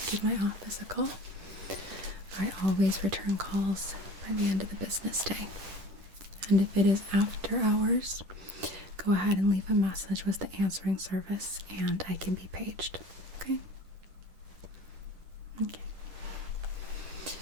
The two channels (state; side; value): late; left; 10 ms